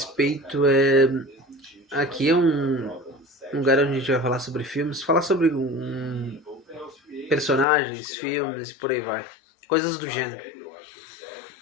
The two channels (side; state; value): right; drops out; at 7.7 s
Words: é. Aqui é um lugar onde a gente vai falar sobre filmes, falar sobre personagens, filmes e por aí vai. Coisas do gênero.